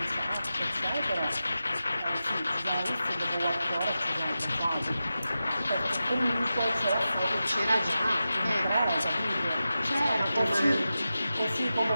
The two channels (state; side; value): inverted; both; correlation -0.92